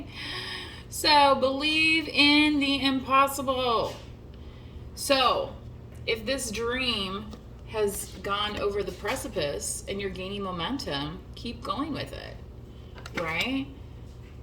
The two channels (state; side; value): identical; both; correlation 1.00